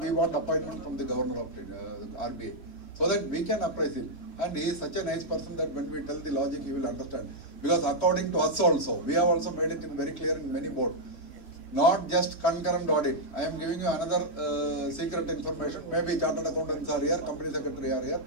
want appointment from the governor of RBI. So that we can appraise him. And he is such a nice person that when we tell the logic, he will understand. Because according to us also, we have also made it very clear in many boards. Not just concurrent audit. I am giving you another secret information. Maybe chartered accountants are here, company secretary are here.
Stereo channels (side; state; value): right; late; 3.2 ms